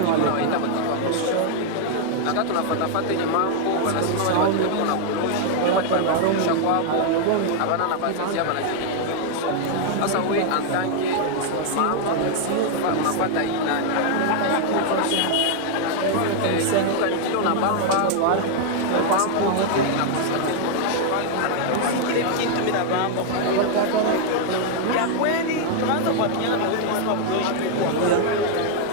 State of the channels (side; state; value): both; different; correlation 0.00